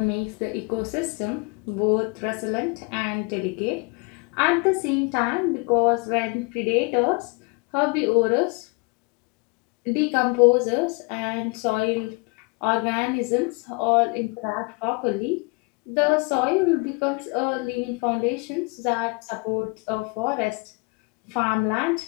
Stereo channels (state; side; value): quieter; right; 31.0 dB